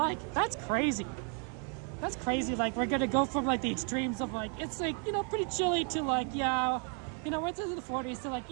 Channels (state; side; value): quieter; left; 39.9 dB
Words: that's crazy. That's crazy. Like, we're gonna go from like the extremes of like, it's like, you know, pretty chilly to like, yeah, you know, we're into the 40s to like,